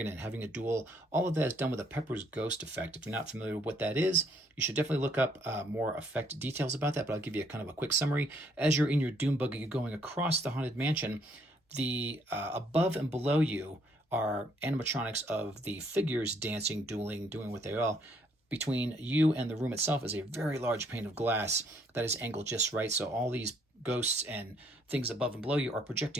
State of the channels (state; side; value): normal; both; correlation 0.67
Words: and having a duel, all of that is done with a Pepper's Ghost effect. If you're not familiar with what that is, you should definitely look up more effect details about that, but I'll give you a kind of a quick summary. As you're in your Doom Buggy going across the Haunted Mansion, the above and below you are animatronics of the figures dancing, dueling, doing what they are. Between you and the room itself is a very large pane of glass that is angled just right. So all these ghosts and things above and below you are